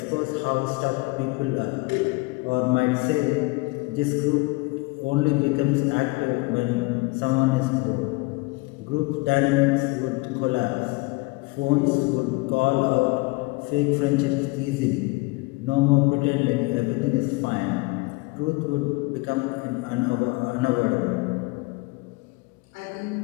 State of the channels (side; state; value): right; quieter; 24.9 dB